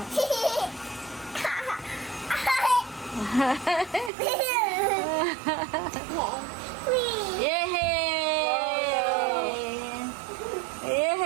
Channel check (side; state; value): left; drops out; at 4.1 s